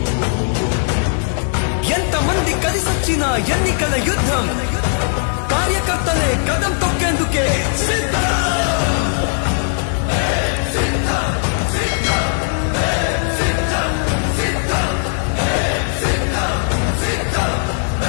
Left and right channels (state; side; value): silent; right; 65 dB below the other